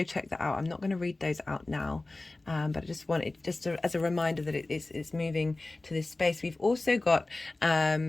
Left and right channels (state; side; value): quieter; right; 3.0 dB